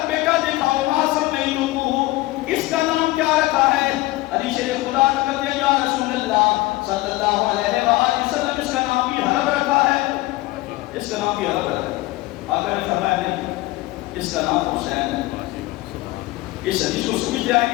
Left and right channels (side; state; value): right; quieter; 19.2 dB